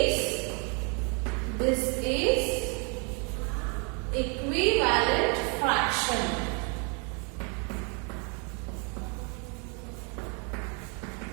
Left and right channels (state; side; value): quieter; left; 35.6 dB